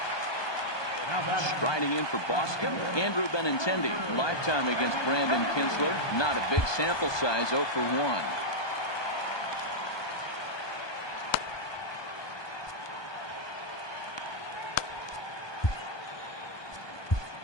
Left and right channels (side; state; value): right; late; 1.2 ms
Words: Striding in for Boston, Andrew Benintendi. Lifetime against Brandon Kinsler. Not a big sample size, 0 for 1.